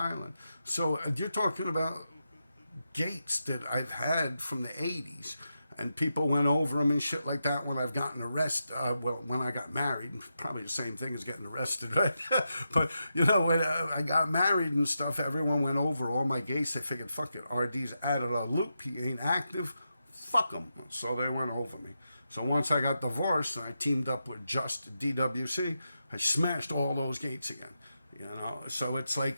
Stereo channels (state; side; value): inverted; both; correlation -0.87